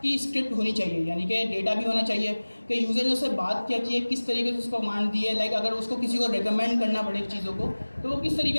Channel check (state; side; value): inverted; both; correlation -1.00